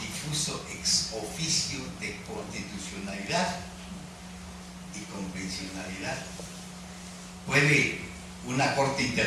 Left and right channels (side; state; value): both; identical; correlation 1.00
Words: ex oficio de constitucionalidad y convencionalidad. Puede una Corte